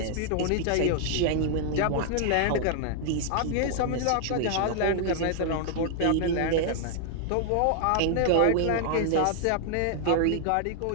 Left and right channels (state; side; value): different; both; correlation 0.00